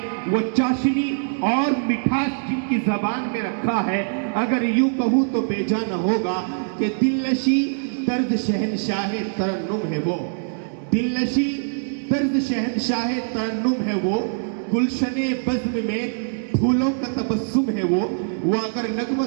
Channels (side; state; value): left; silent; digital silence